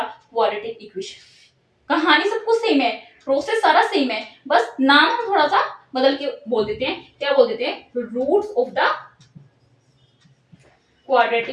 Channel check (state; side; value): identical; both; correlation 1.00